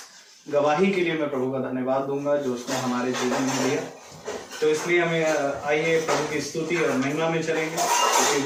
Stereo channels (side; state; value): both; identical; correlation 1.00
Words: गवाही के लिए मैं प्रभु का धन्यवाद दूंगा जो उसने हमारे जीवन में दिया। तो इसलिए हमें आइए प्रभु की स्तुति और महिमा में चलेंगे,